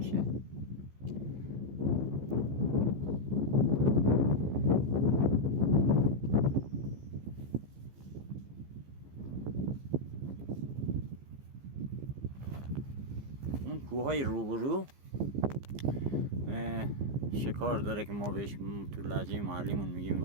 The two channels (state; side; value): late; left; 15 ms